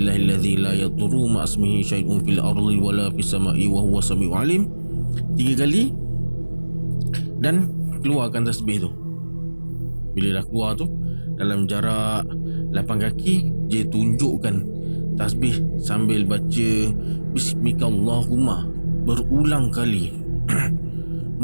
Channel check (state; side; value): inverted; both; correlation -1.00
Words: la yadurru ma'asmihi syai'un fil ardi wala fis sama'i wa huwa sami'ul alim 3 kali dan keluarkan tasbih tu. Bila dah keluar tu, dalam jarak 8 kaki, J tunjukkan tasbih sambil baca Bismikallahumma berulang kali.